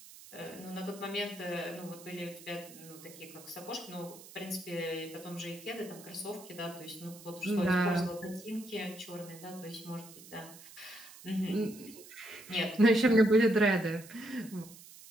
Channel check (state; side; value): noise; right; hiss, 18 dB below the sound